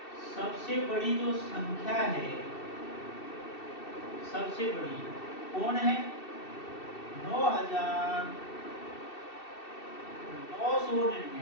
सबसे बड़ी जो संख्या है, सबसे बड़ी कौन है?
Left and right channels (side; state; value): right; late; 2.7 ms